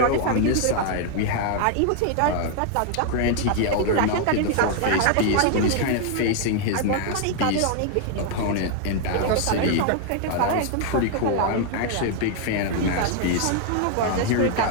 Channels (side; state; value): both; different; correlation 0.00